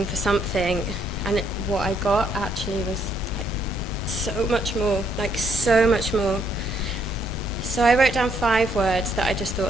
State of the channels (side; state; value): both; normal; correlation 0.72